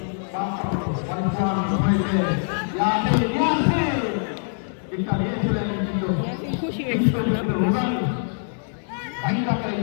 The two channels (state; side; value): silent; right; 63 dB below the other